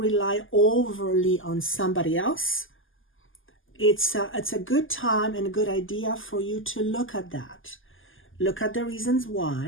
rely overly on somebody else, it's a good time and a good idea for you to look at that. Look at the reasons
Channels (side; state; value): right; late; 0.58 ms